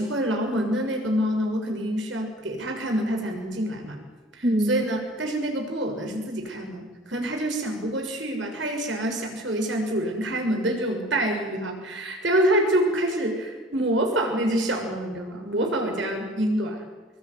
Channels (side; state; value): both; normal; correlation 0.46